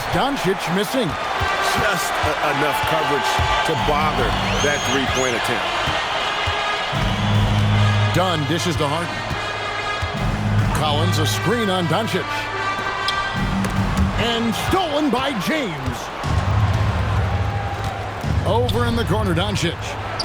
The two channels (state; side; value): identical; both; correlation 1.00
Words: Doncic missing. Just enough coverage to bother that three-point attempt. Dunn dishes to Harden. Collins, a screen on Doncic. And stolen by James. Over in the corner, Doncic.